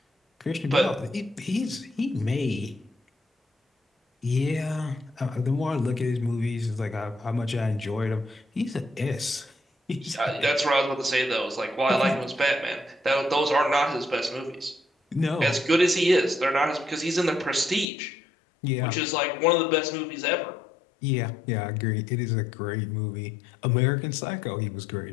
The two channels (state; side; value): drops out; right; at 17.9 s